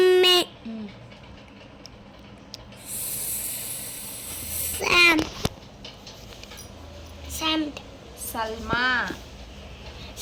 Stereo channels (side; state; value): both; identical; correlation 1.00